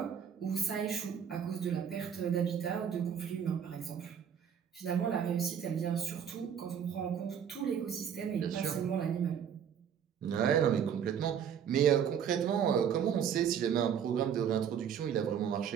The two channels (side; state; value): left; quieter; 8.2 dB